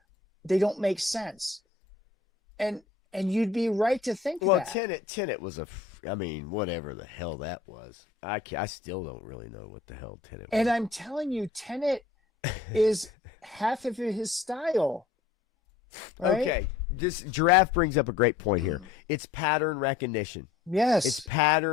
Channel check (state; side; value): quieter; right; 4.9 dB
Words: they don't make sense. And you'd be right to think that. Well, Tenet was I mean, whatever the hell that was. I still don't really know what the hell Tenet was. And I'm telling you, Tenet is half of his style. Right? Okay, this Giraffe brings up a great point here. It's pattern recognition. Yes. It's